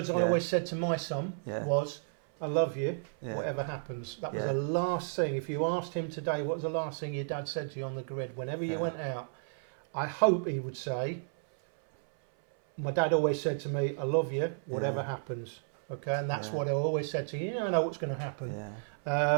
I always said to my son was, "I love you, whatever happens." That was the last thing. If you asked him today, what was the last thing your dad said to you on the grid whenever you went out? I hope he would say, my dad always said to me, "I love you, whatever happens." Okay, and that's what I always said to you. You never know what's going to happen.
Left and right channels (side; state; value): left; silent; 56 dB below the other